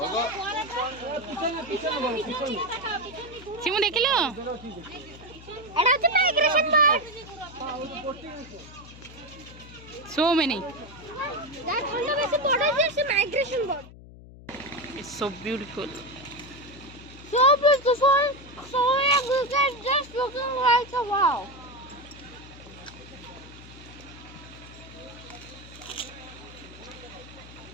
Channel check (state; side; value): noise; left; hum, 18 dB below the sound